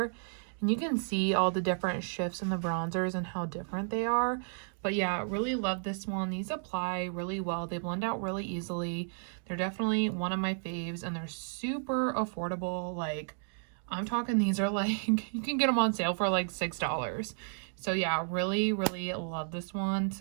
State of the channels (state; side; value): silent; left; digital silence